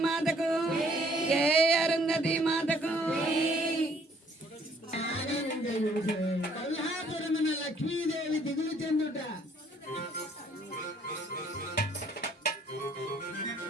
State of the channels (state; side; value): normal; both; correlation 0.62